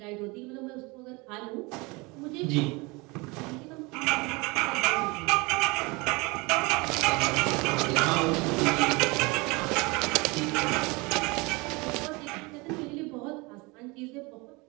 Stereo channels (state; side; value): quieter; left; 25.9 dB